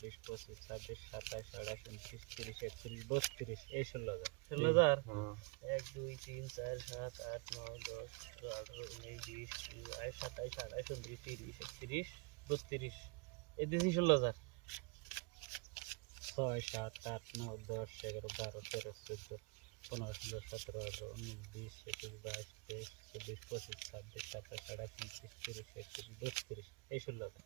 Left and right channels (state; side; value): quieter; left; 30.0 dB